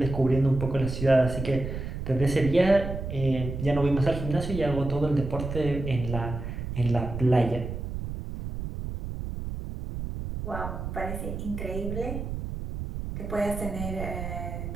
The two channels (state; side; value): noise; right; rumble, 6 dB below the sound